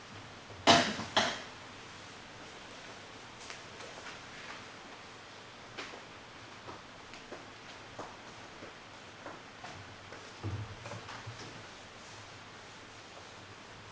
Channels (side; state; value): both; identical; correlation 1.00